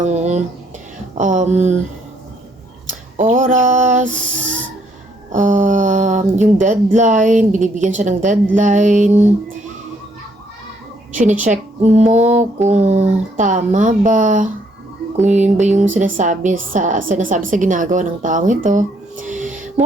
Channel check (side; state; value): both; normal; correlation 0.69